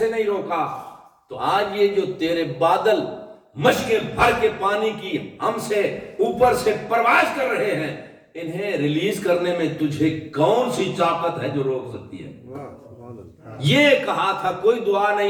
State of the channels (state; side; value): identical; both; correlation 1.00